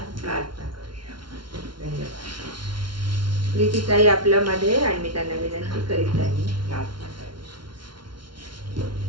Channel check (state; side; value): late; left; 0.73 ms